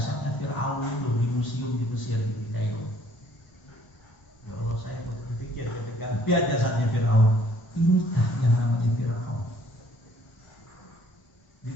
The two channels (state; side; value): late; right; 1.0 ms